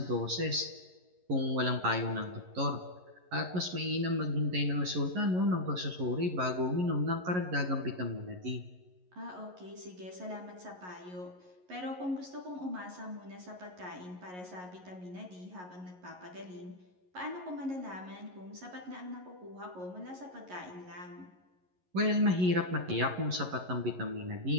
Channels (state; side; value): late; left; 11 ms